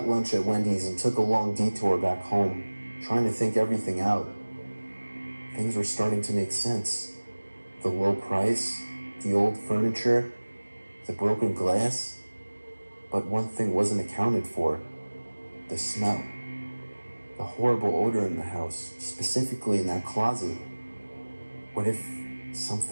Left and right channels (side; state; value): both; inverted; correlation -1.00